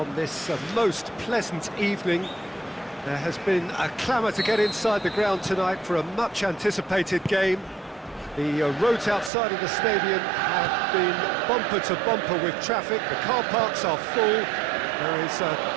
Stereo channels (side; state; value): left; drops out; at 9.3 s